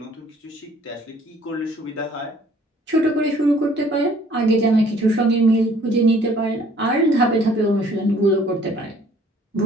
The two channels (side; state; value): both; normal; correlation 0.57